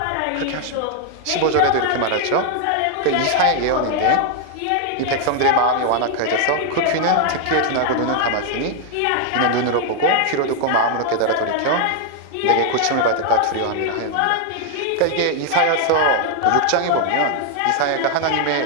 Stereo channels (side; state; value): both; different; correlation 0.00